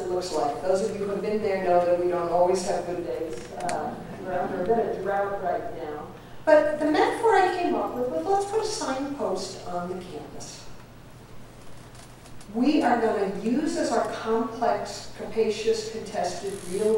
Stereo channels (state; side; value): identical; both; correlation 1.00